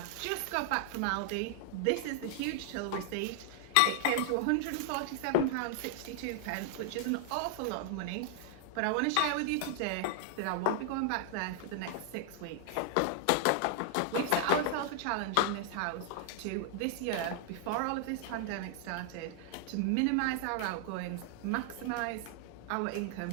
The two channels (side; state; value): both; different; correlation 0.00